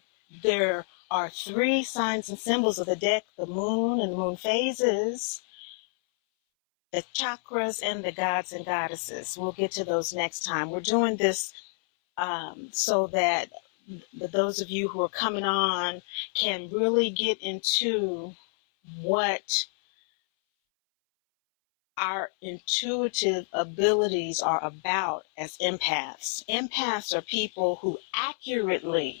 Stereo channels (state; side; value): silent; right; 59 dB below the other